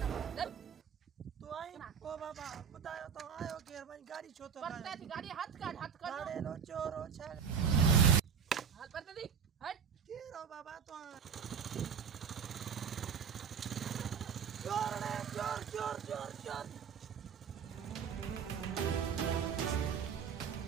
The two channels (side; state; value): left; quieter; 7.1 dB